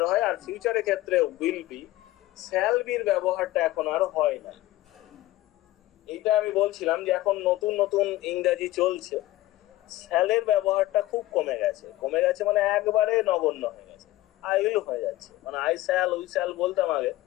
হয়, আর ফিউচারের ক্ষেত্রে উইল বি। শ্যাল বির ব্যবহারটা এখন আর হয় না। এইটা আমি বলছিলাম যে এখন নতুন নতুন ইংরেজি চলছে, শ্যালের ব্যবহারটা খুব কমে গেছে। কমে গেছে মানে একবারে নগণ্য হয়ে গেছে, আই উইল হয়ে যাচ্ছে। মানে আই শ্যাল, উই শ্যাল বলতাম আগে,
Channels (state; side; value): quieter; right; 16.6 dB